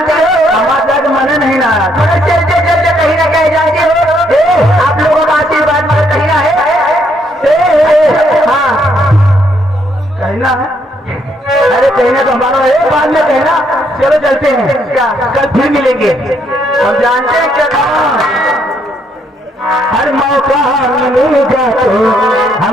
हो हमारा मन नहीं ना मगर चलते चलते कहीं ना कहीं जाते हो आप लोगों का आशीर्वाद मगर कहीं ना है हाँ कहीं ना है अरे कहना तो हमारा है बाद में कहना चलो चलते हैं क्या कल फिर मिलेंगे हम जानते हैं क्या हर मौका मिलेगा तो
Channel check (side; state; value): both; normal; correlation 0.71